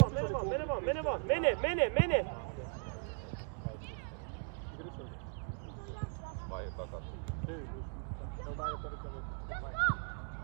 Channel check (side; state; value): left; silent; 52 dB below the other